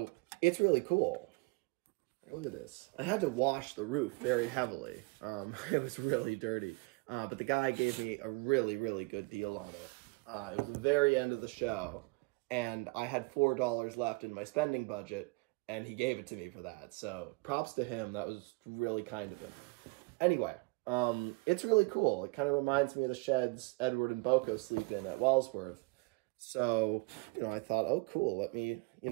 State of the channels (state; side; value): quieter; left; 26.8 dB